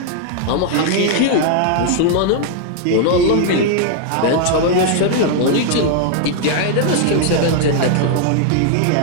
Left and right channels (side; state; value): both; different; correlation 0.00